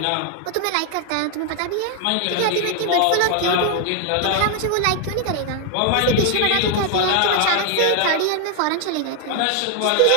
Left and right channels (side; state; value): both; different; correlation 0.00